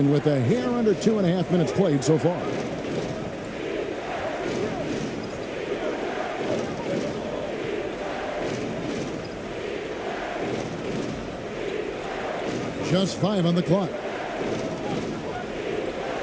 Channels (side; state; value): both; identical; correlation 1.00